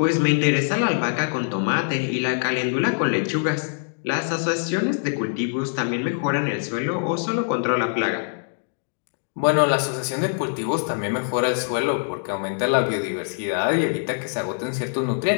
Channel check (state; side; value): silent; right; digital silence